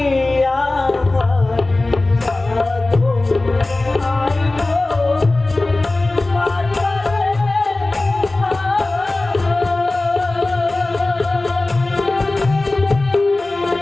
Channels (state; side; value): quieter; right; 3.0 dB